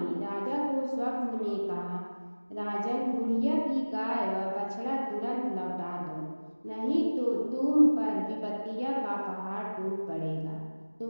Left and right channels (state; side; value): inverted; both; correlation -1.00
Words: राजा को स्वप्न में कहा, राजन, बुढ़िया की गाय व बछड़ा तुरंत लौटा दो, नहीं तो तुम पर विपत्तियों का पहाड़ टूट पड़ेगा,